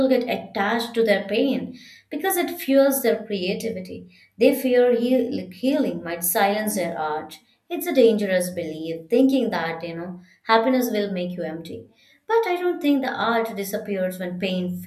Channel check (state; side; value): identical; both; correlation 1.00